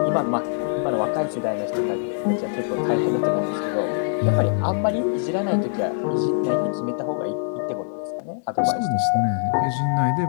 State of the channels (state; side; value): silent; right; digital silence